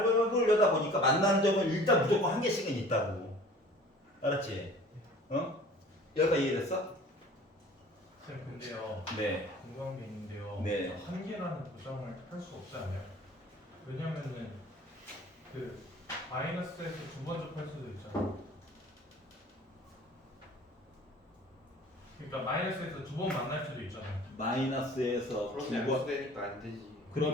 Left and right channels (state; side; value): normal; both; correlation 0.47